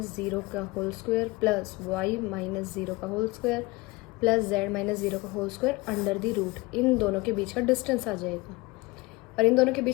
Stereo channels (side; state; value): right; quieter; 23.4 dB